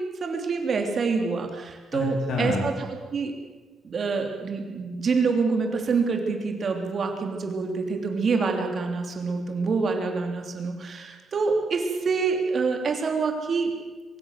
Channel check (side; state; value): left; quieter; 3.9 dB